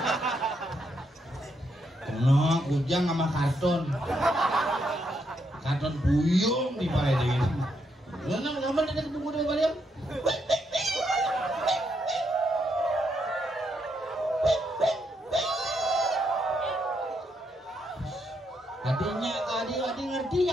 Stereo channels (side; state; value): both; normal; correlation 0.78